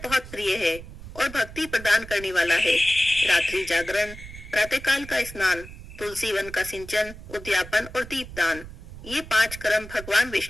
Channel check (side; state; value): right; noise; rumble, 14 dB below the sound